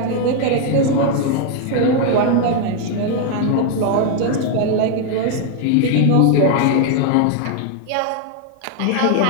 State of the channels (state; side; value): different; both; correlation 0.00